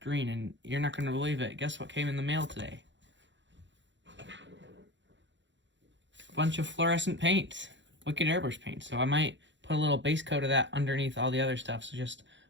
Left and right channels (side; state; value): left; late; 0.54 ms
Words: green, and you're not going to believe it. Guess what came in the mail today? A bunch of fluorescent paints, Wicked Airbrush paint. So I might put a little base coat of that underneath all the other stuff, so just